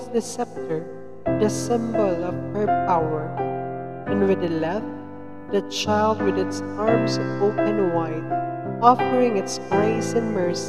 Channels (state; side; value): identical; both; correlation 1.00